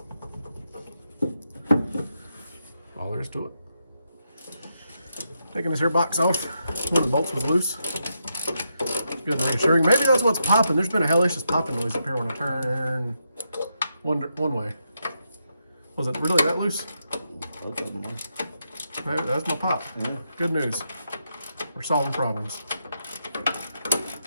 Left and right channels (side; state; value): both; inverted; correlation -0.83